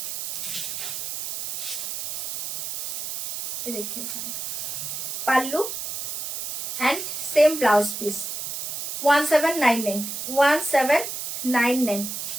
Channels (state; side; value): noise; right; hiss, 5 dB below the sound